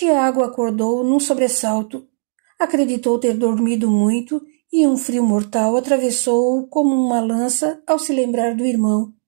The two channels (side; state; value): left; silent; digital silence